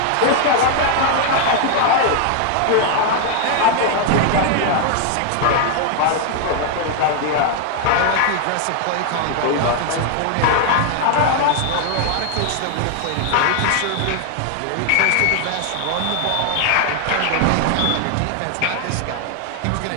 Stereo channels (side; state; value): both; different; correlation 0.00